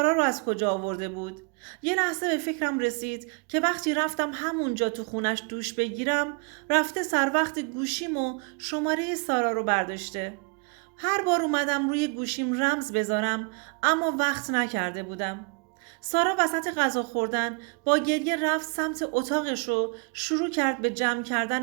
رو از کجا آورده بود؟ یه لحظه به فکرم رسید که وقتی رفتم همونجا تو خونش دوش بگیرم رفته سر وقت گوشیم و شماره سارا رو برداشته. هر بار اومدم روی گوشیم رمز بذارم اما وقت نکرده بودم. سارا وسط غذا خوردن با گریه رفت سمت اتاقش و شروع کرد به جمع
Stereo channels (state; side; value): quieter; left; 34.1 dB